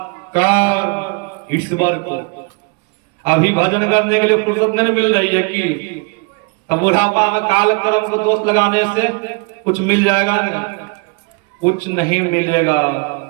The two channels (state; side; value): quieter; left; 31.9 dB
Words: ईश्वर को। अभी भजन करने के लिए फुर्सत नहीं मिल रही है कि तब बुढ़ापा में काल कर्म को दोष लगाने से कुछ मिल जाएगा? नहीं, कुछ नहीं मिलेगा।